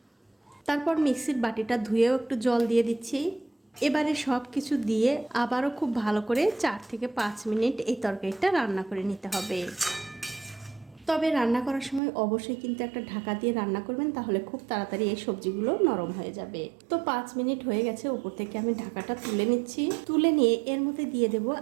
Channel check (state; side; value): drops out; left; at 12.0 s